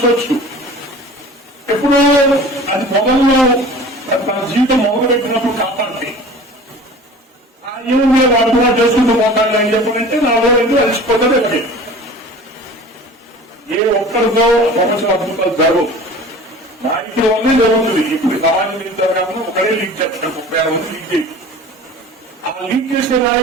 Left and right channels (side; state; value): both; normal; correlation 0.42